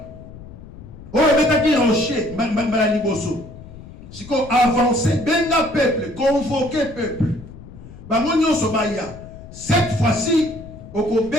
Oh, betaki rocher mbala liboso. Siko avancer benga peuple, convoquer peuple. Bango nyonso baya. Cette fois-ci, oko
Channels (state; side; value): noise; left; rumble, 16 dB below the sound